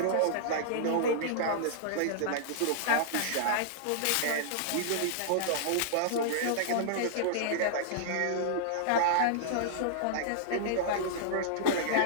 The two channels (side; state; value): both; different; correlation -0.01